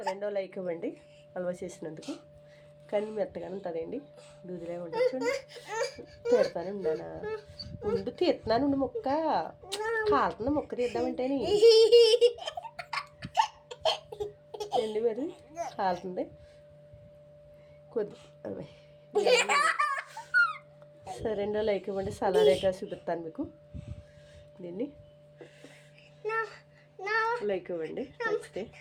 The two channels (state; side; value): identical; both; correlation 1.00